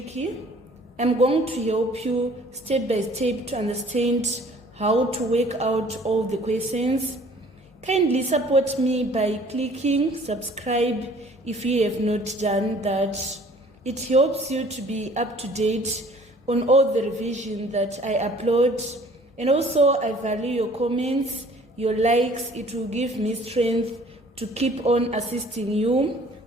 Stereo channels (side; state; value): both; normal; correlation 0.53